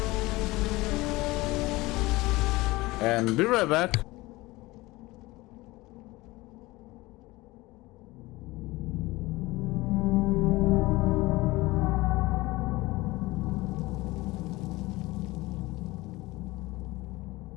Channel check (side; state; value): right; quieter; 20.6 dB